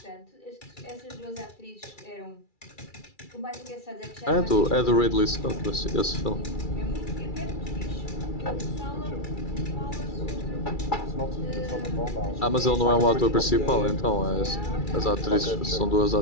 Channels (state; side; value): late; right; 2.3 ms